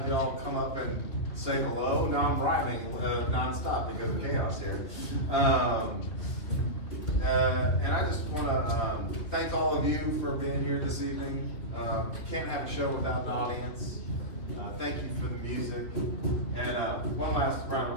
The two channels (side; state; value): right; late; 3.2 ms